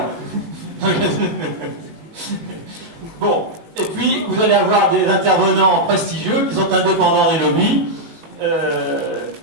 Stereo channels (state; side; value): late; left; 18 ms